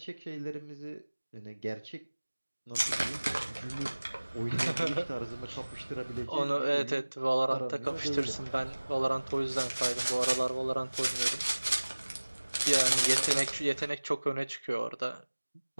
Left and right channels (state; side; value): inverted; both; correlation -1.00